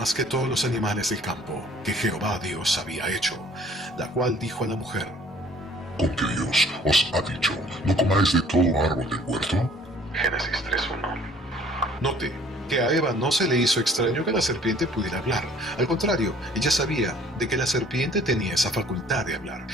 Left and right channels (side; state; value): both; normal; correlation 0.55